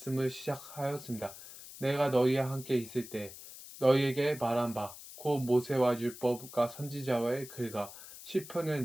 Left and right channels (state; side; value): noise; left; hiss, 15 dB below the sound